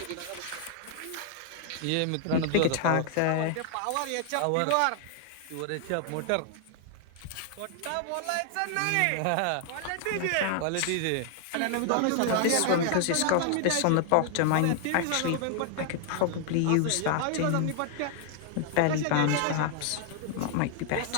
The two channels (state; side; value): different; both; correlation 0.00